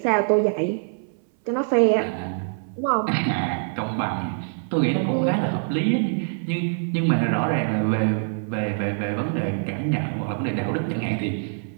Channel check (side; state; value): left; silent; 62 dB below the other